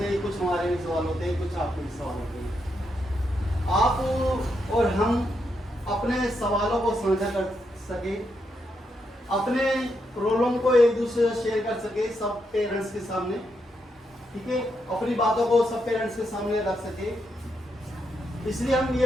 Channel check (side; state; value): both; normal; correlation 0.81